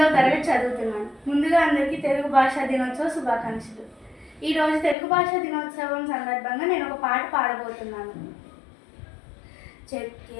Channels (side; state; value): right; drops out; at 5.0 s